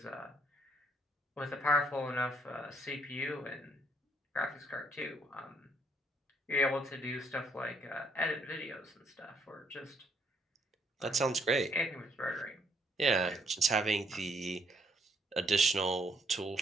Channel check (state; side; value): normal; both; correlation 0.69